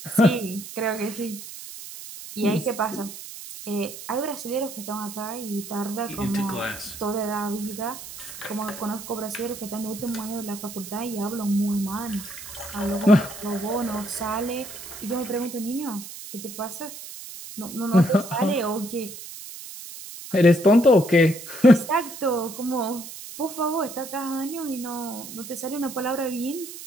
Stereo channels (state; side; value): noise; right; hiss, 12 dB below the sound